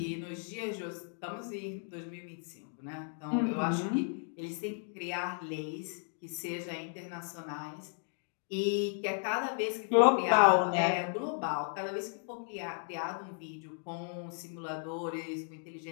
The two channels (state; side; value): silent; right; 55 dB below the other